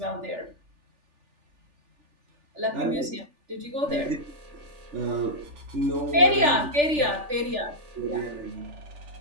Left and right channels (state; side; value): late; left; 3.4 ms